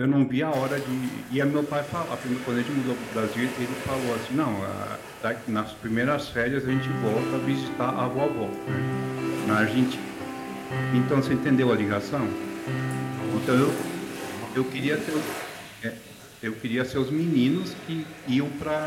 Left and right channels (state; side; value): identical; both; correlation 1.00